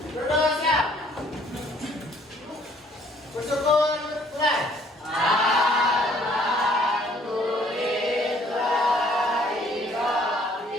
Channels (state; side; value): normal; both; correlation 0.61